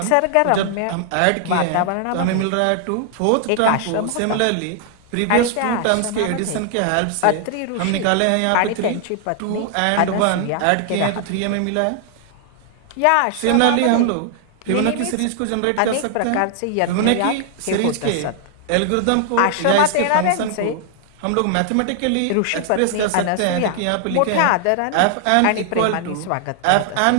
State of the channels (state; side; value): different; both; correlation 0.00